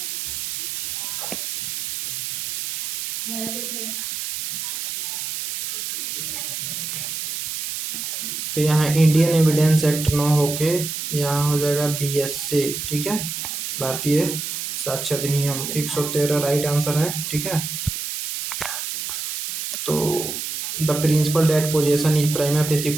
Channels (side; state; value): right; noise; hiss, 5 dB below the sound